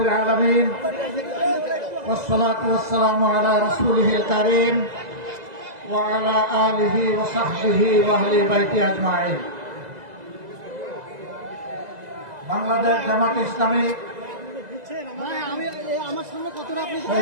আলামিন ওয়াসসালাতু ওয়াসসালামু আলা রাসূলিহিল কারীম ওয়া আলা আলিহি ওয়া সাহবিহি ওয়া আহলি বাইতি আজমাইন। বাংলাদেশ জামাত ইসলামী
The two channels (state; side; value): late; left; 2.0 ms